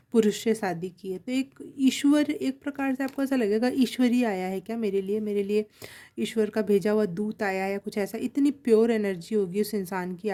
पुरुष से शादी की है, तो एक ईश्वर, एक प्रकार से आपको ऐसा लगेगा ईश्वर ही आया है क्या मेरे लिए ईश्वर का भेजा हुआ दूत आया है या कुछ ऐसा। इतनी प्योर एनर्जी होगी उस इंसान की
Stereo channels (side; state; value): both; identical; correlation 1.00